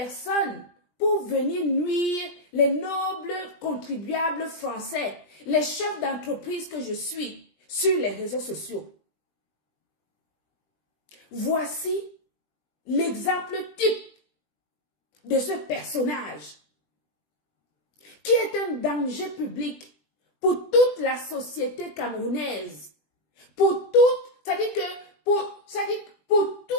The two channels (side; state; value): right; late; 20 ms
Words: pour venir nuire les nobles contribuables français, les chefs d'entreprise que je suis sur les réseaux sociaux. Voici l'exemple type de ce personnage qui est un danger public pour toute la société camerounaise, pour toute